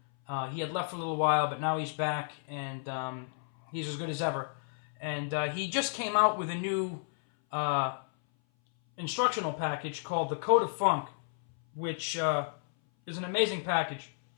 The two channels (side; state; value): right; silent; 57 dB below the other